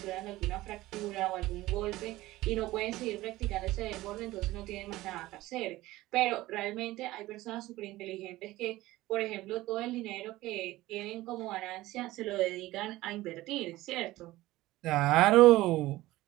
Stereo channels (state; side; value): quieter; left; 17.4 dB